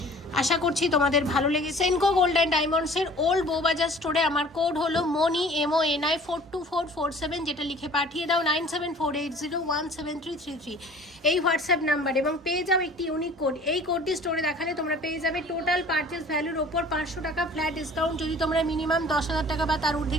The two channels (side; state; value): both; normal; correlation 0.49